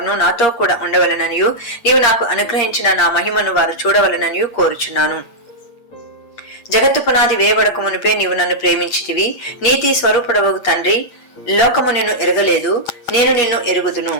నాతో కూడా ఉండవలననియు నీవు నాకు అనుగ్రహించిన నా మహిమను వారు చూడవలననియు కోరుచున్నాను. జగత్తు పునాది వేయబడక మునిపే నీవు నన్ను ప్రేమించితివి. నీతి స్వరూపుడవగు తండ్రి, లోకము నిన్ను ఎరగలేదు, నేను నిన్ను ఎరుగుదును.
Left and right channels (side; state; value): right; late; 8.6 ms